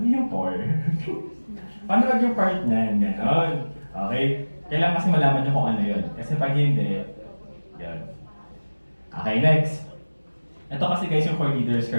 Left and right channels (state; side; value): inverted; both; correlation -1.00